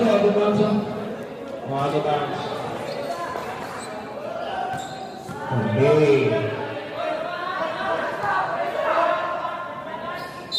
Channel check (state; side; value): identical; both; correlation 1.00